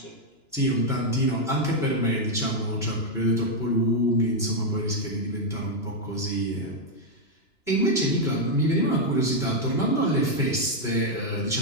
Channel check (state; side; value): late; right; 2.9 ms